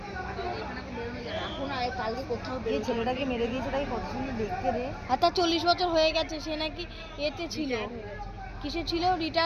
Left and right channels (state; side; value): identical; both; correlation 1.00